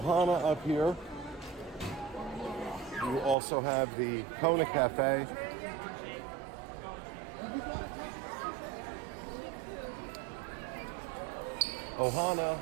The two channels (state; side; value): drops out; left; at 3.4 s